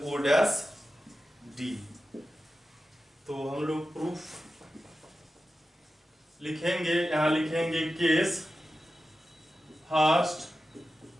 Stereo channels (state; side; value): normal; both; correlation 0.93